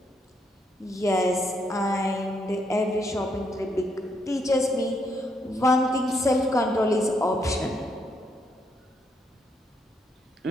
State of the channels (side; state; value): both; normal; correlation 0.76